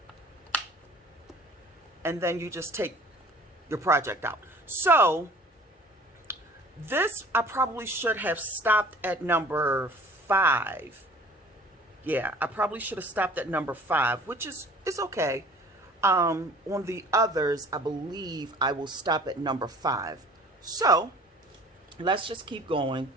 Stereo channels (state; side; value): normal; both; correlation 0.48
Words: And then you just take your project out. So this, I probably should have stopped at number 5. Yeah, I probably should have stopped at number 5, which is okay. On the others, I believe I will stop at number 5. So let's just keep going.